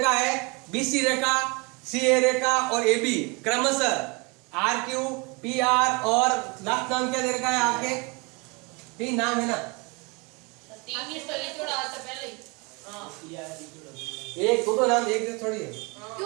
है BC रेखा, CA रेखा और AB क्रमशः RQ, PR और लास्ट नाम क्या दे रखा है आपके, 3 नाम है ना, एक दो नाम, एक थोड़ी है।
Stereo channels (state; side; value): quieter; left; 29.1 dB